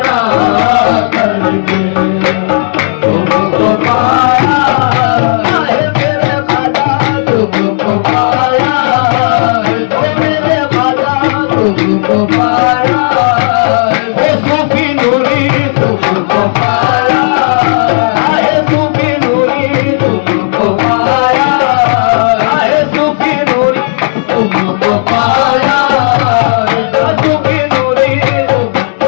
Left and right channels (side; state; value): right; silent; 62 dB below the other